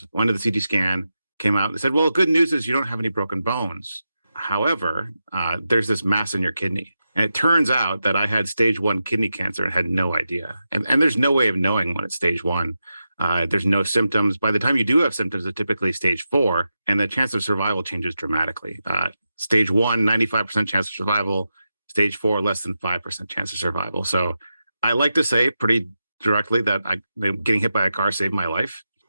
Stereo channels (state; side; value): inverted; both; correlation -0.89